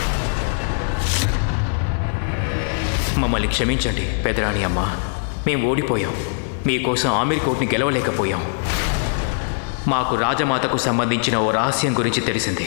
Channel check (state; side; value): silent; right; digital silence